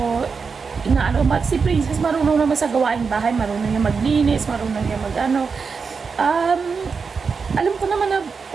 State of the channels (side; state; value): left; quieter; 5.3 dB